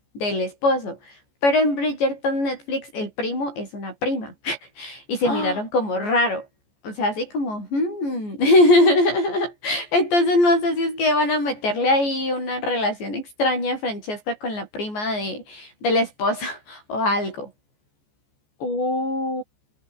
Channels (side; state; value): right; late; 14 ms